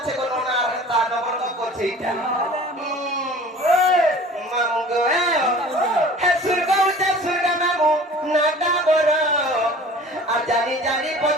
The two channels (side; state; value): both; normal; correlation 0.44